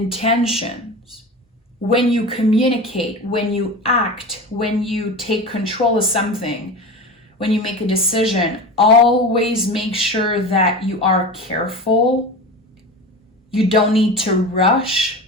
When you communicate, when you act, when you take control of something, when you make a decision, always make sure that you are careful. You don't need to rush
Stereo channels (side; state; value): both; normal; correlation 0.29